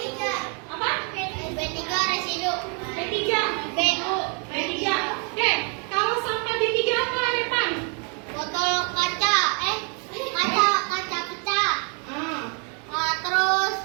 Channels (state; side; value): quieter; left; 37.7 dB